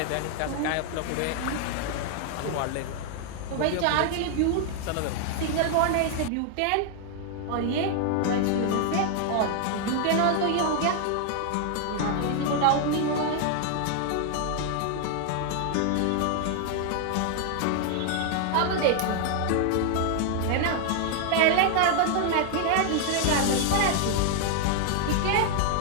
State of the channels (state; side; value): different; both; correlation 0.00